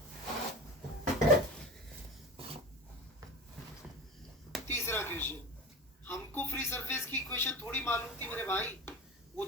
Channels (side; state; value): both; normal; correlation 0.31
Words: तीसरा क्वेश्चन, हमको फ्री सरफेस की इक्वेशन थोड़ी मालूम थी मेरे भाई, वो